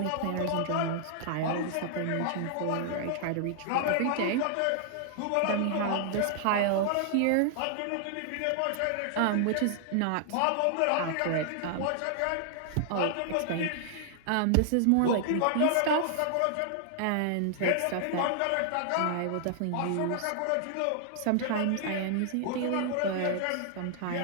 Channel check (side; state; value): both; different; correlation 0.00